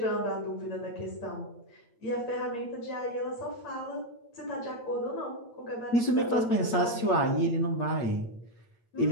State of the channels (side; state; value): right; late; 8.7 ms